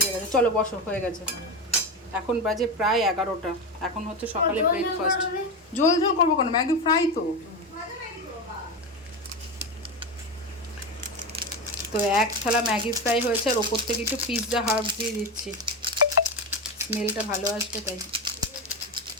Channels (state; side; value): normal; both; correlation 0.17